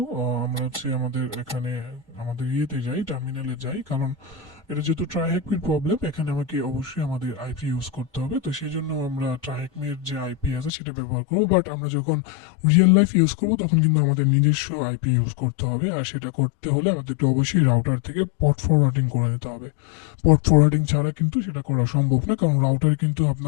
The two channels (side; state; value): right; drops out; at 10.7 s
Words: আমরা হচ্ছে আমাদের এখানে আমাদের ইয়েতে যাই, টার্মিনালে যাই, কারণ এটা যেহেতু ট্রাইহেকমির প্রবলেম, এখানে আমাকে অবশ্যই আমাদের আইপি ইউজ করতে হবে। তো সেই জন্য আমরা ট্রাইহেকমির যে আইপি আছে সেটা ব্যবহার করবো, বাট আমরা যখন রিয়েল লাইফ ইউজ করবো তখন কিন্তু আমাদের নিজস্ব আইপি ইউজ করতে হবে। আর সেটা করতে হলে আমাদেরকে অবশ্যই রাউটার থেকে পট ফরওয়ার্ডিং করে নিতে হবে। পট ফরওয়ার্ডিং ছাড়া কিন্তু সেটা করা সম্ভব না, কারণ রাউটার কিন্তু